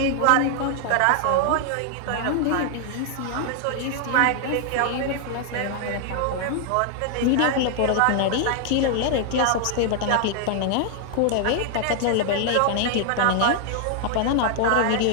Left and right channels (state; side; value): different; both; correlation 0.00